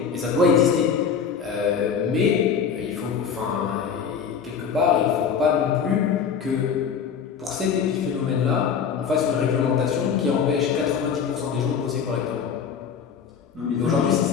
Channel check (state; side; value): quieter; right; 6.8 dB